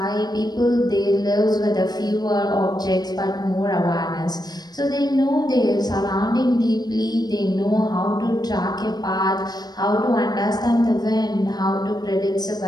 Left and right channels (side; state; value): right; late; 0.19 ms